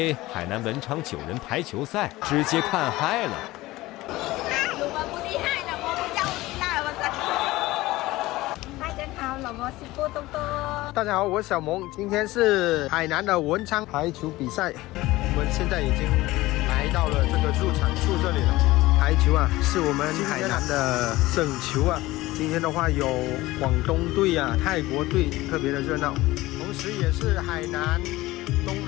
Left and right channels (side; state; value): right; quieter; 18.5 dB